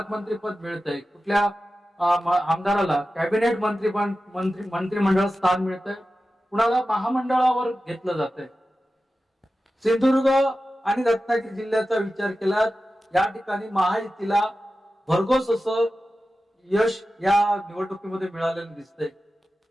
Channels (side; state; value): both; normal; correlation 0.94